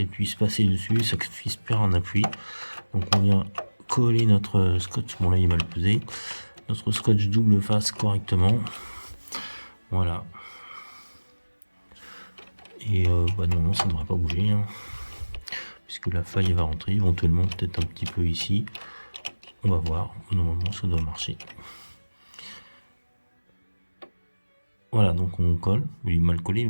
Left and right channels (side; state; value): both; inverted; correlation -1.00